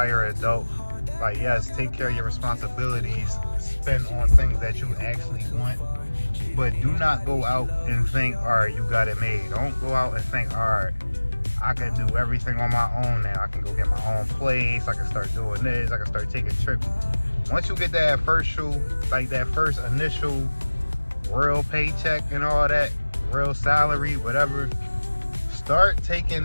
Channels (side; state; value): both; inverted; correlation -1.00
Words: adult. Like, yes, take care of your responsibilities. Spend on things that you actually want. But do not go out and think, all right, you got it made. Don't go out and think, all right, I can do everything on my own now. I can go get my own place. I can start doing this. I can start taking trips. Once you get that first initial real paycheck and all that, real salary, whatever, start taking